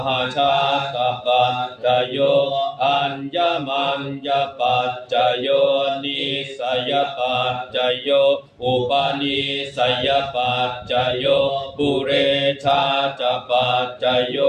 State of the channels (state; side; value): identical; both; correlation 1.00